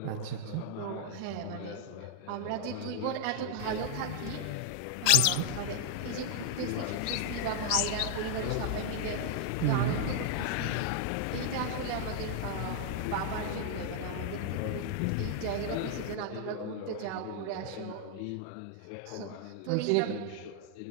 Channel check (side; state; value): both; different; correlation 0.00